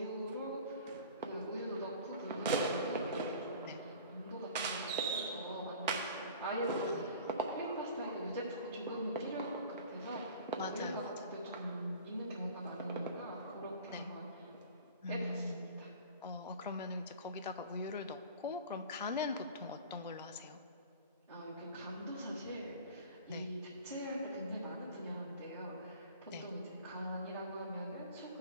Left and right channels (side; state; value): both; inverted; correlation -0.41